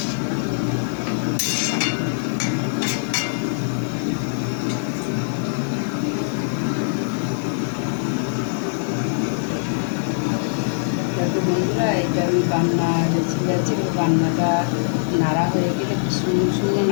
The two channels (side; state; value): right; silent; digital silence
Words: বন্ধুরা, এটা আমি বান্না রেসিপি আছে। বান্নাটা নাড়া হয়ে গেলে শূন্য শূন্য